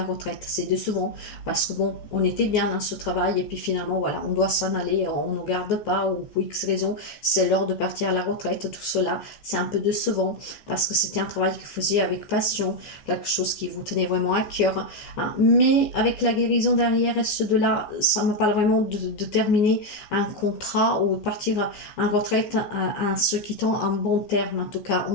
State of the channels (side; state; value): right; late; 14 ms